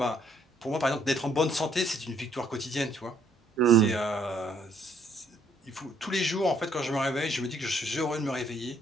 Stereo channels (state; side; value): normal; both; correlation 0.66